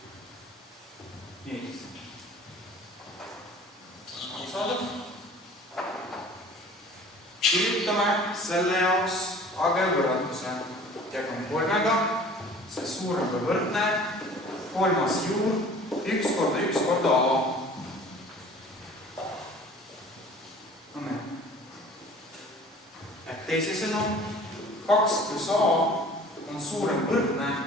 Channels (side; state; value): both; normal; correlation 0.47